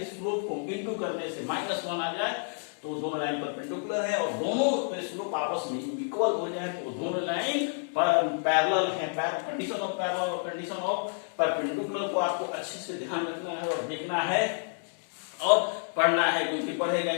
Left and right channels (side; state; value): right; silent; 58 dB below the other